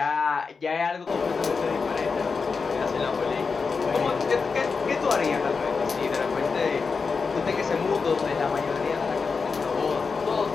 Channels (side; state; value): right; quieter; 4.9 dB